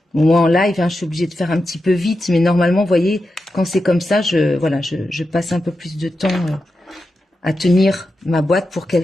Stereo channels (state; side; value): normal; both; correlation 0.89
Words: Bon, moi en live, hein, je suis obligée de faire un petit peu vite, mais normalement, vous voyez, quand c'est comme ça, je passe un peu plus de temps à tenir ma boîte pour